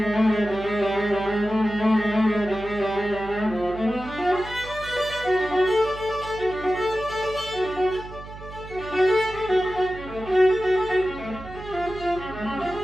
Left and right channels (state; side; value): noise; right; hum, 14 dB below the sound